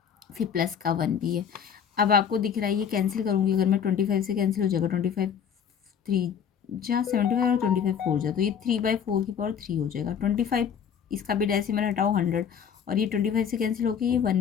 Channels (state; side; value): quieter; right; 7.8 dB